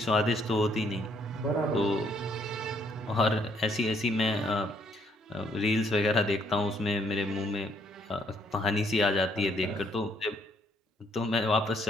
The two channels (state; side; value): normal; both; correlation 0.68